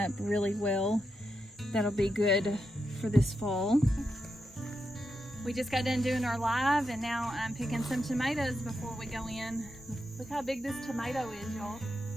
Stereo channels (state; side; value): normal; both; correlation 0.86